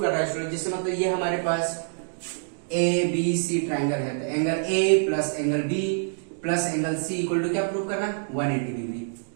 है स्टूडेंट, जिससे मतलब ये हमारे पास ए बी सी ट्राइंगल है, तो angle A plus angle B plus angle C equal to क्या प्रूव करना है 180 डिग्री।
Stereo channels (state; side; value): silent; left; digital silence